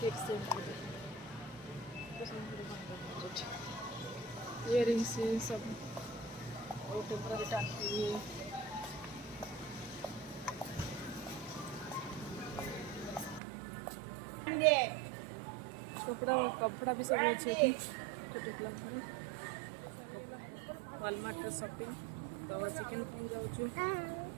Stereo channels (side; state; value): left; drops out; at 13.4 s